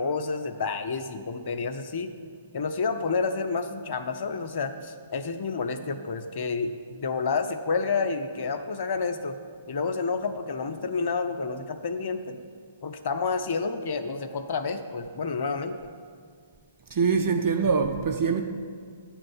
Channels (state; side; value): inverted; both; correlation -0.57